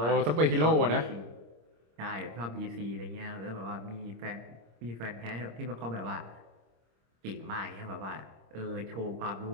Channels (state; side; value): late; left; 26 ms